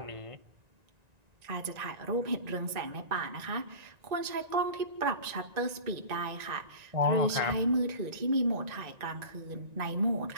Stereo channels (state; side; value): late; left; 1.9 ms